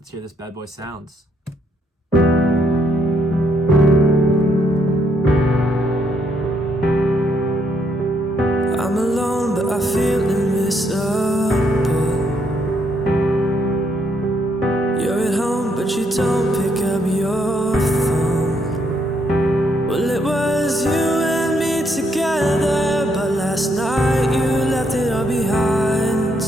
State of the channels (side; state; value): both; normal; correlation 0.73